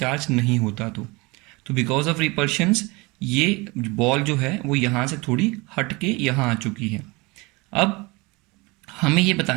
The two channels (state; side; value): quieter; left; 25.2 dB